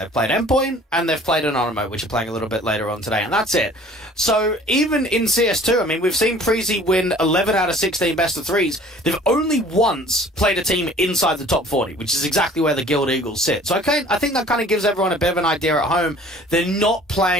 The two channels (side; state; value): both; normal; correlation 0.50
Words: played Endpoint, and they've played Anonymous, which are playing a little bit later on today, and that's it. So, even in CS2, I mean, we've seen Preezy win 11 out of 16 best-of-3s. They've only once played a team inside the top 40, which is exactly where the Guild Eagles sit. So, I think that kind of gives everyone a bit of an idea at home. They're not